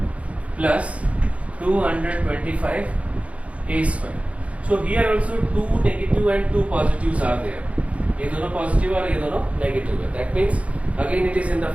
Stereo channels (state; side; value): late; left; 0.064 ms